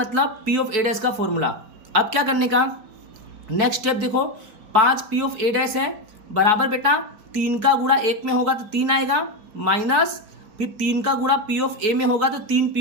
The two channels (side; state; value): left; late; 4.6 ms